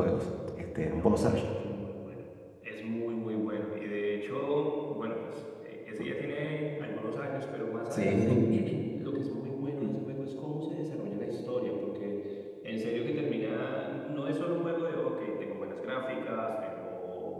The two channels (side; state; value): both; identical; correlation 1.00